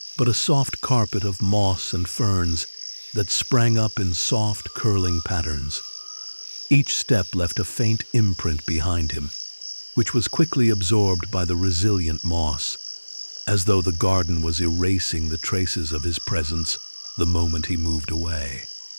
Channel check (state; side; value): inverted; both; correlation -1.00